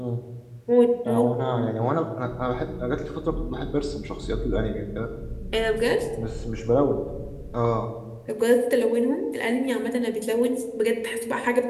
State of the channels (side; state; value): both; identical; correlation 1.00